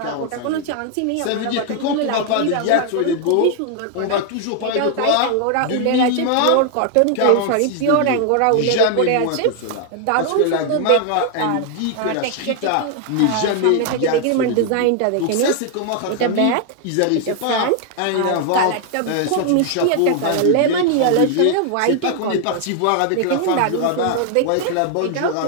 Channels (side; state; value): both; different; correlation 0.00